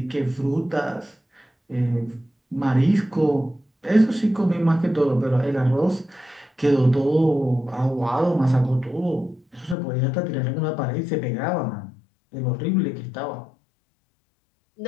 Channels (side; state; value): right; drops out; at 9.8 s